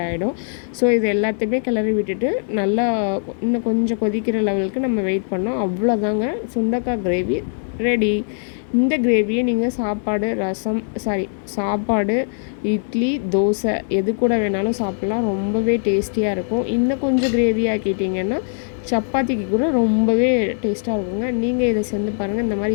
ஆகிடும். ஸோ இது எல்லாத்தையுமே கிளறி விட்டுட்டு நல்லா இன்னும் கொஞ்சம் கொதிக்கிற லெவலுக்கு நம்ம வெயிட் பண்ணோம். அவ்வளோதாங்க, சுண்டைக்காய் கிரேவி ரெடி. இந்த கிரேவியை நீங்கள் சாப்பாடு, இட்லி, தோசை எது கூட வேணாலும் சாப்பிட்லாம். ரொம்பவே டேஸ்டியாக இருக்கும். இன்னும் கொஞ்சம் கிரேவி ஆக்கிட்டிங்கன்னா சப்பாத்திக்கு கூட ரொம்பவே டேஸ்ட்டாக இருக்குங்க. நீங்கள் இதை செஞ்சு பாருங்கள். இந்த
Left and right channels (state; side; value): silent; right; 65 dB below the other